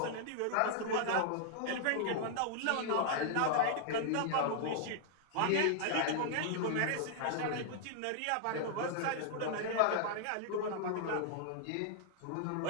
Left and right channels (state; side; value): different; both; correlation -0.01